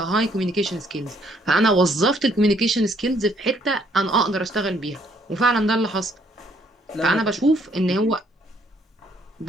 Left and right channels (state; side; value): normal; both; correlation 0.66